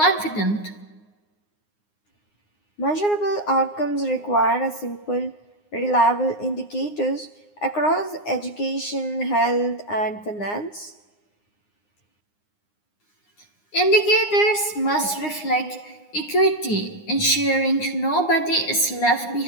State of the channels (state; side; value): late; right; 9.7 ms